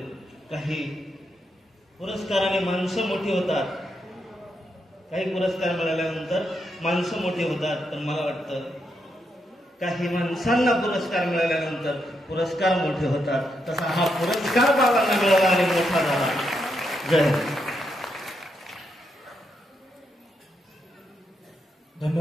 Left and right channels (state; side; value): normal; both; correlation 0.81